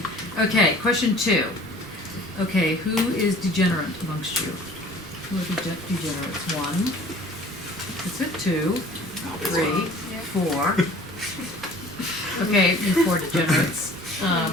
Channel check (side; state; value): both; normal; correlation 0.49